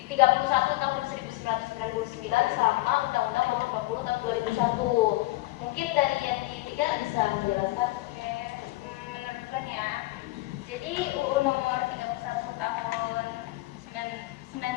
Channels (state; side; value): quieter; right; 19.5 dB